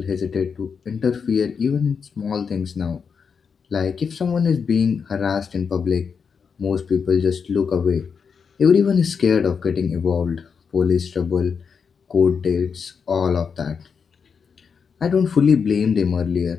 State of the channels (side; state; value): right; quieter; 6.1 dB